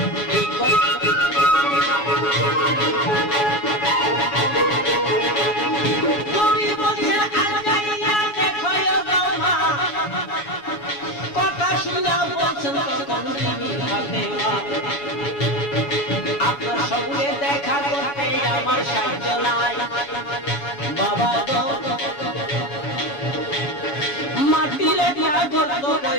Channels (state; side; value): late; right; 7.1 ms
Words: আপনার সঙ্গে দেখা করতে আমার সাহায্য নাই বাবা গো। মাটির একটা গর্ত